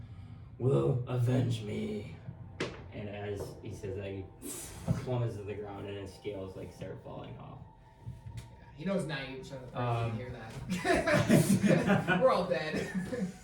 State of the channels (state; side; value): identical; both; correlation 1.00